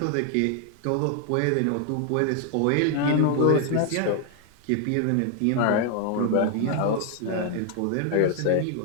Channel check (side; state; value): both; different; correlation 0.00